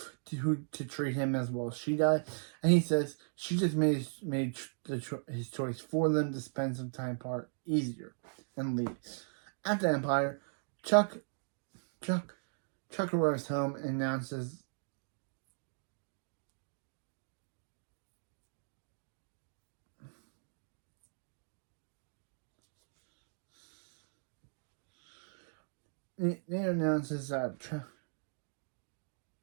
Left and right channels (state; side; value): silent; left; digital silence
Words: to treat him as well as she does, and he says she just made his choice for them to spend some time apart easier, and leaves. At the Empire, Chuck arrives home and announces that